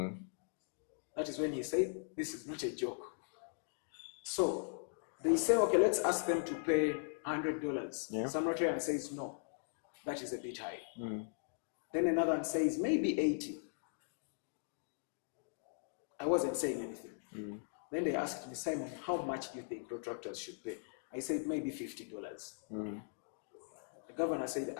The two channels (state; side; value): silent; right; digital silence